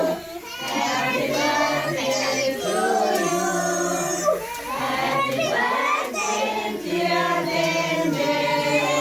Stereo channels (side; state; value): both; identical; correlation 1.00